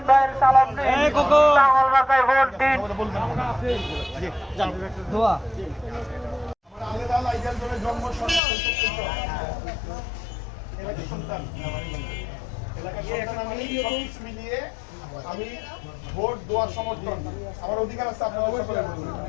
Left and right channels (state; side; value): drops out; right; at 8.4 s